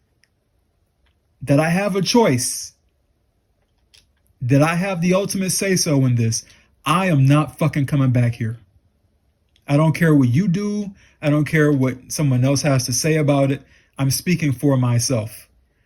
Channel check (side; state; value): both; identical; correlation 1.00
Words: that I have a choice, that I have the ultimate say so in this, I am not fucking coming back here. I don't care what you do. I don't care what someone else has to say about it. I'm speaking for myself.